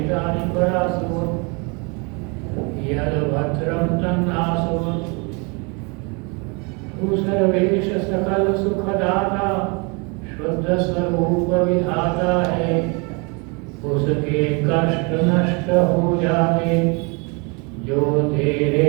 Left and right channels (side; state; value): left; quieter; 31.5 dB